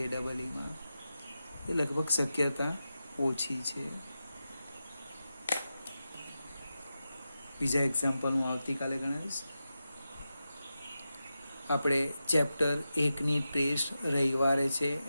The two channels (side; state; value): both; inverted; correlation -0.91